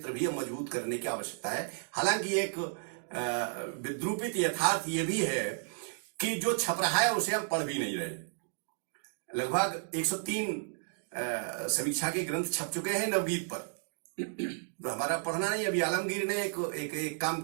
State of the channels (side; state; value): left; silent; digital silence